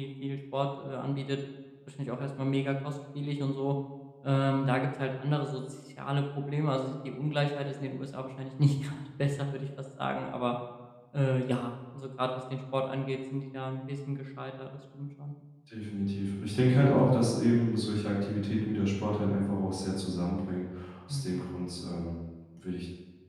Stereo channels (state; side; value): identical; both; correlation 1.00